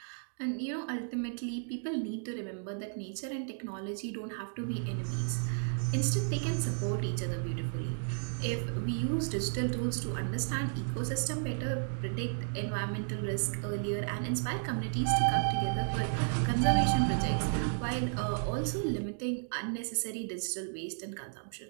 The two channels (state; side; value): silent; left; digital silence